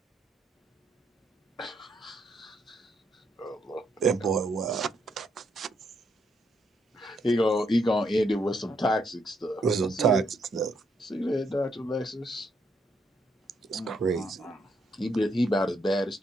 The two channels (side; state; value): both; normal; correlation 0.75